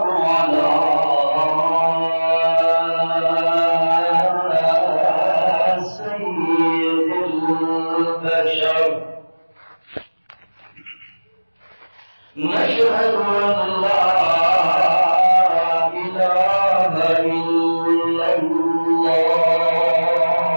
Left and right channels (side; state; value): both; inverted; correlation -1.00